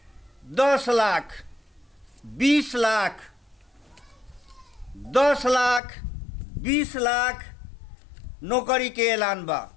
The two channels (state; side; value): drops out; right; at 5.8 s